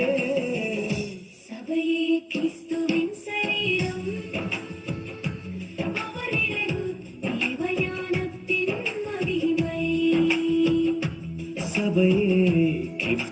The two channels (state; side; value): identical; both; correlation 1.00